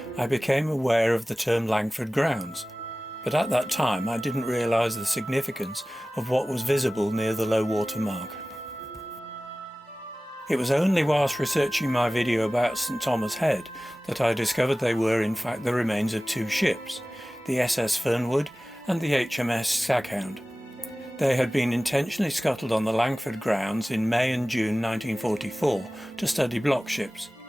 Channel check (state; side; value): normal; both; correlation 0.97